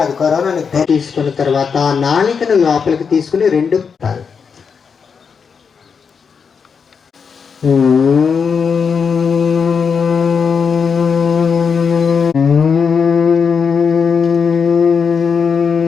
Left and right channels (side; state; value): right; quieter; 6.1 dB